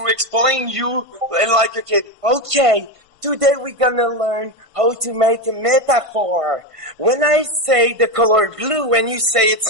explain you like a kid. Okay, today we're gonna learn how to make a metaphor. When I say the color blue and you say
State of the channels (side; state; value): left; late; 1.5 ms